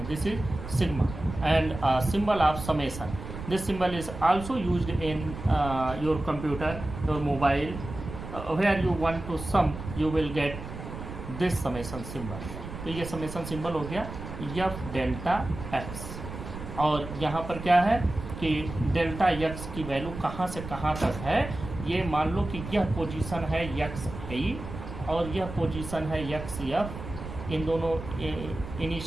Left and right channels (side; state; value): right; noise; rumble, 10 dB below the sound